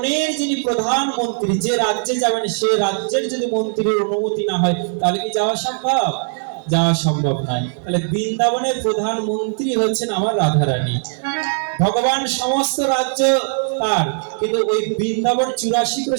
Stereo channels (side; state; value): left; silent; digital silence